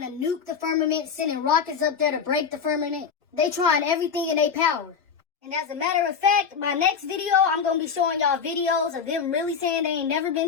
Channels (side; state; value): right; quieter; 6.4 dB